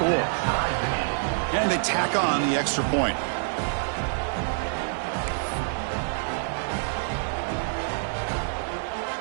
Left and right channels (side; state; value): left; silent; 60 dB below the other